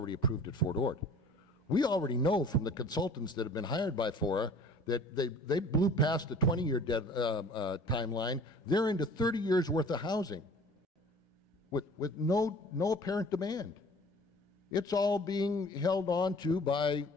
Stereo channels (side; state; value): both; normal; correlation 0.47